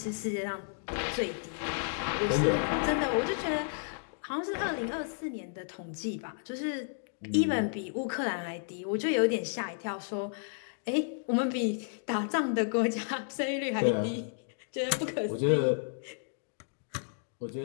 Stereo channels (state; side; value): silent; right; digital silence